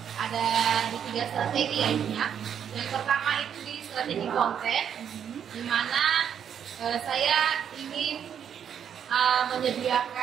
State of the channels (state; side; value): quieter; left; 8.5 dB